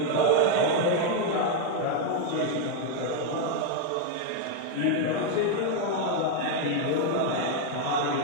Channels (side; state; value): both; different; correlation 0.01